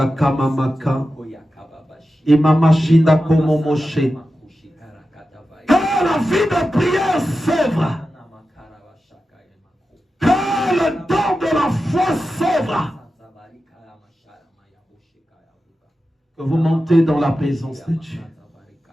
kamamaka. Imama shinda komomoshe. Que la vie de prière s'ouvre. Que le don de la foi s'ouvre. Que vous montez dans la présence de Dieu.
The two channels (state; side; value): normal; both; correlation 0.92